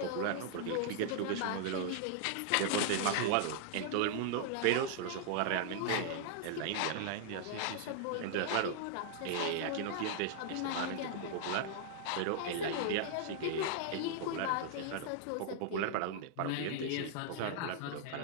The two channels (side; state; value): both; different; correlation -0.01